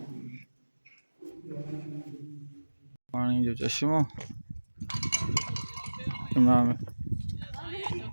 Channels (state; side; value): inverted; both; correlation -1.00